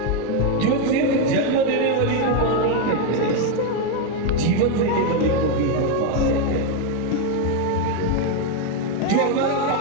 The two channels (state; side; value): different; both; correlation 0.02